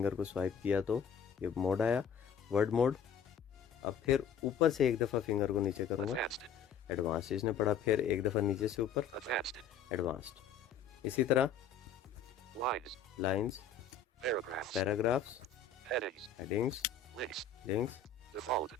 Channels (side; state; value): right; quieter; 6.5 dB